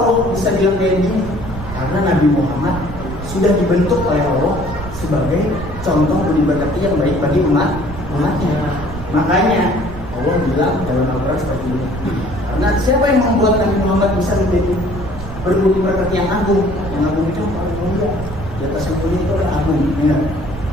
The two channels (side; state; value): right; noise; rumble, 11 dB below the sound